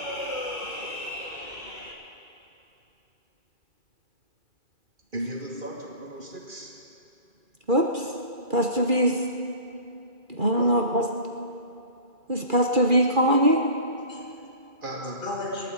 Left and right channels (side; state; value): left; late; 2.4 ms